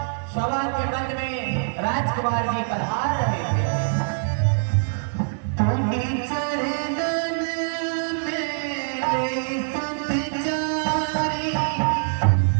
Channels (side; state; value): left; silent; digital silence